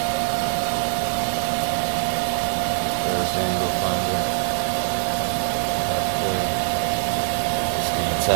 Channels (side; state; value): left; silent; digital silence